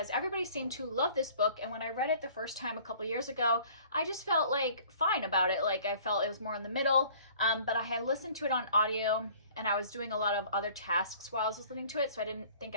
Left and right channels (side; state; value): both; inverted; correlation -0.52